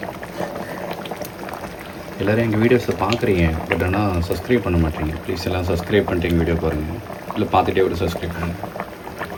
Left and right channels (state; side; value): identical; both; correlation 1.00